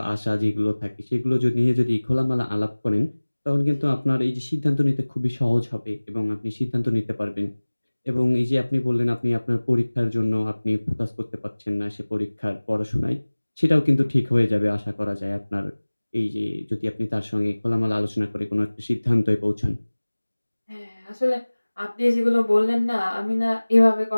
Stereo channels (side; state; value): both; inverted; correlation -1.00